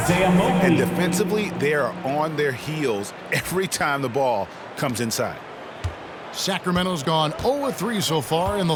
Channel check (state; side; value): identical; both; correlation 1.00